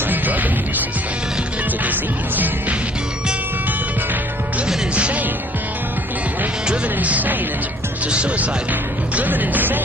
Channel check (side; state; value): both; normal; correlation 0.57